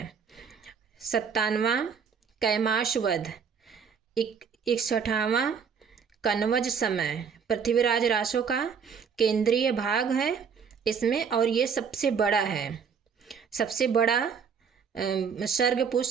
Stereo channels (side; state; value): left; quieter; 6.5 dB